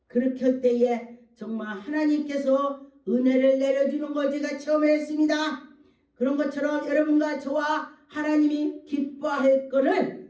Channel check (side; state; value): both; identical; correlation 1.00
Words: 그렇게 할 때에 정말 하나님께서 은혜를 내려주는 걸 제가 체험했습니다. 그런 것처럼 여러분과 저와 하나님이 기뻐할